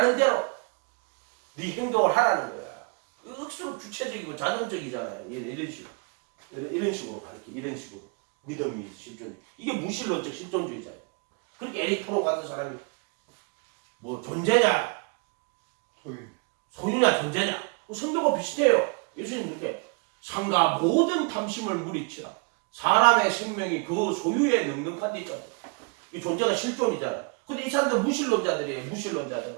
대로 네 행동을 하라는 거야. 억수로 주체적이고 자존적이잖아요. 이런 식으로 이런 식으로 가르쳐. 이런 식으로 믿음이 실존. 이게 무신론적 실존주의잖아요. 그렇게 에릭 프로 같은 사람이 뭐 존재냐 소유냐 존재냐 성경과 비슷해요. 예수님께 상가 모든 탐심을 물리치라. 사람의 생명이 그 소유에 능력한다잖아. 이 존재가 실존이잖아. 근데 이 사람들 무신론자들이에요.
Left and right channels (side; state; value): left; quieter; 34.5 dB